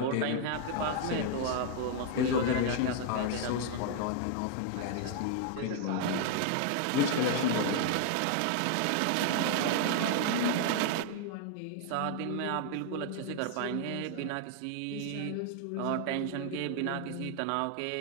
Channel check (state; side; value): different; both; correlation 0.00